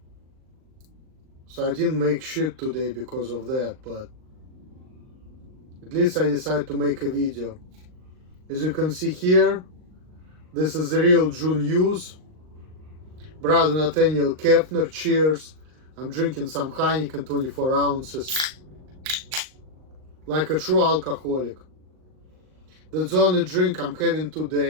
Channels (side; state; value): left; late; 38 ms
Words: So I didn't make shit today because of that, but at least I decided to make a video. As you can see here, this is the real June news. Brother Nathaniel Kepner, cheers. I'm drinking some Heineken 24 ounces. Like a true alcoholic. That's the only drink I'm having